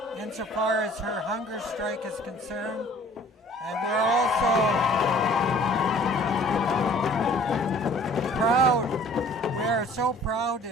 insofar as her hunger strike is concerned. And we're also proud, we are so proud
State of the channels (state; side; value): normal; both; correlation 0.52